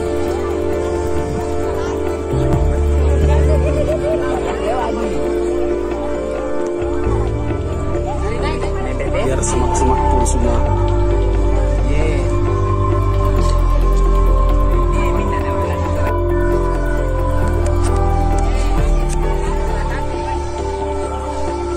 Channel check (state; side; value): identical; both; correlation 1.00